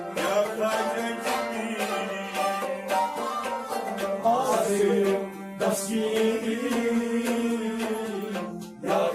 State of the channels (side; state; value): both; identical; correlation 1.00